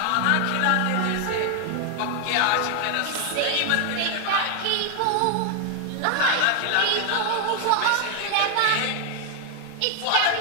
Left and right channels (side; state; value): both; different; correlation 0.01